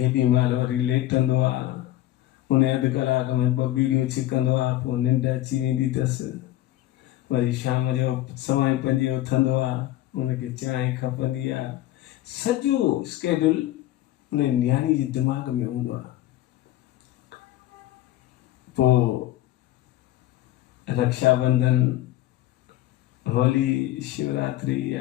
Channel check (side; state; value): right; quieter; 14.7 dB